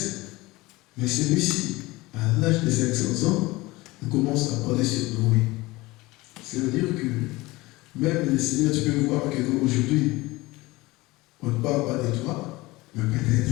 mais celui-ci, à l'âge de 500 ans, il commence à parler sur Noé. Ça veut dire que même le Seigneur, tu peux voir qu'aujourd'hui, on ne parle pas de toi, mais peut-être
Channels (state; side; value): quieter; right; 21.0 dB